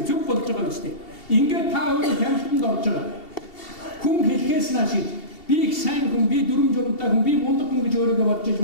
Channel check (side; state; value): right; late; 2.7 ms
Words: болж байгаа юм шүү дээ. Ингээд та өөрөө тамхинд орж байгаа. Хүн хэлхээс нааш би их сайн хүн, би дүрм журамтай хүн, би мундаг хүн гэж өөрийгөө бодож иж